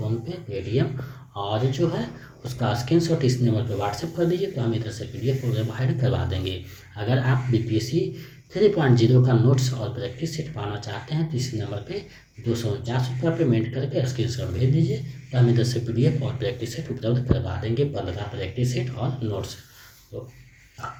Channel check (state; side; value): identical; both; correlation 1.00